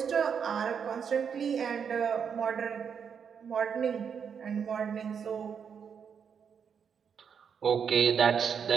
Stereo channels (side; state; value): left; quieter; 7.0 dB